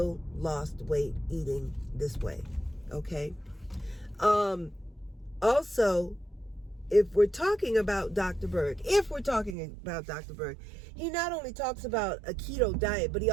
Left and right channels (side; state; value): left; drops out; at 9.6 s